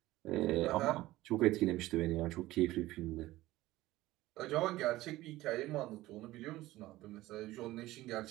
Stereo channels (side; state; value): left; quieter; 17.1 dB